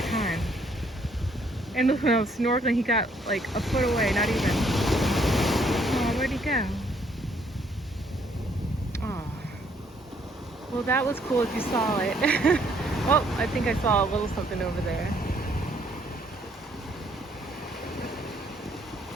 time. And when I was snorkeling, he got like a foot away, not even. Oh, where'd he go? Oh. Well, that was cool if you saw it. Oh, I think I saw a little something over there.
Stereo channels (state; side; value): normal; both; correlation 0.67